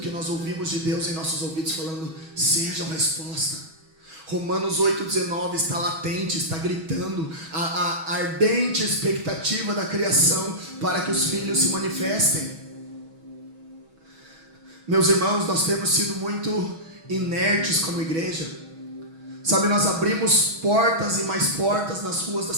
nós ouvimos de Deus em nossos ouvidos falando: sejam resposta. Romanos 8,19 está latente, está gritando a ardente expectativa da criação para que os filhos se manifestem. Meus irmãos, nós temos sido muito inertes como igreja. Sabe, nós abrimos portas e mais portas nas ruas da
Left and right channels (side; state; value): left; late; 6.2 ms